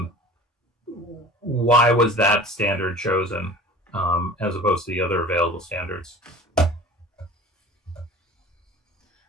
Why was that standard chosen as opposed to the other available standards?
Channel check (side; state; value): both; normal; correlation 0.41